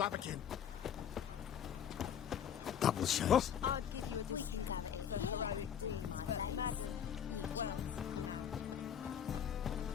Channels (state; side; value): quieter; right; 8.7 dB